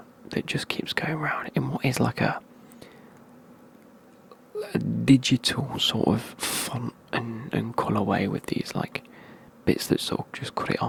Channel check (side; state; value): both; identical; correlation 1.00